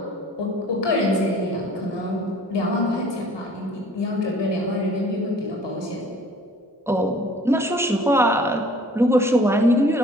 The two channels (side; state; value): both; normal; correlation 0.51